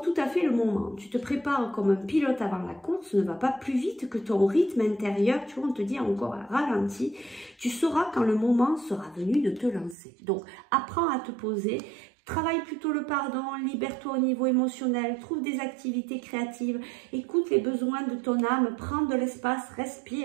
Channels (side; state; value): left; drops out; at 10.0 s